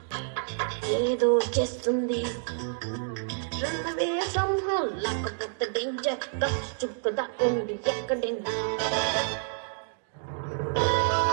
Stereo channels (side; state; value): left; silent; digital silence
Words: ఏదో చేస్తుంది రన్నవే సంహం లేకపోతే డేంజర్ చుక్కదా ఉండి ఎక్కడైనా